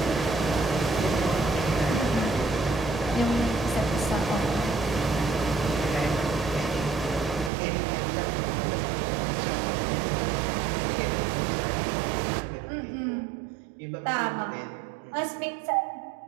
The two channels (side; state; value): left; drops out; at 7.5 s